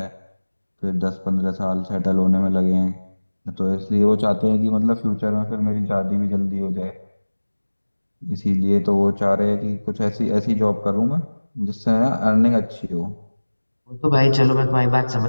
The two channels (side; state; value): both; inverted; correlation -1.00